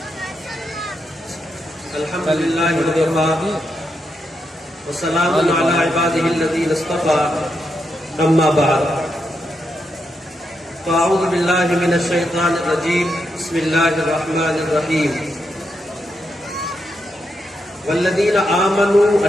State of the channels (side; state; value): both; normal; correlation 0.83